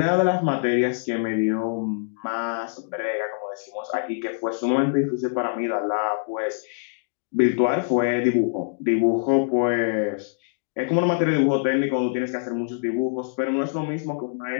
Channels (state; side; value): silent; right; digital silence